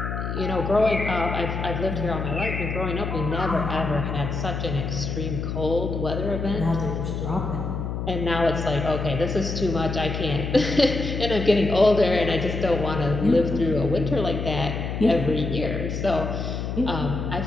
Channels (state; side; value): noise; left; hum, 4 dB below the sound